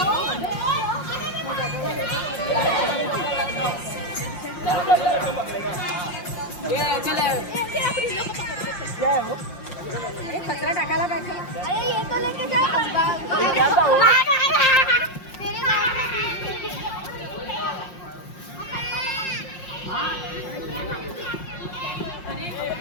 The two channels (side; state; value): right; late; 5.6 ms